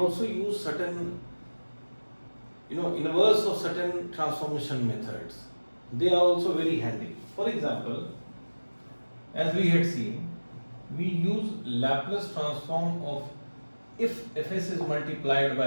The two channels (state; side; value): inverted; both; correlation -1.00